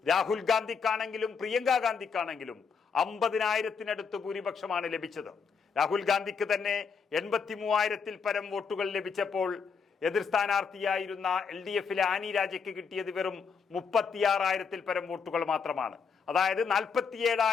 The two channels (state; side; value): quieter; right; 5.8 dB